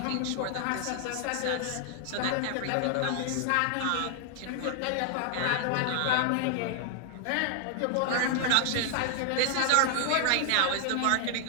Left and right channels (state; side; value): different; both; correlation 0.00